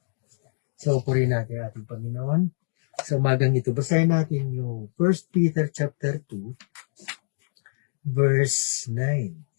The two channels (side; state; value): right; silent; digital silence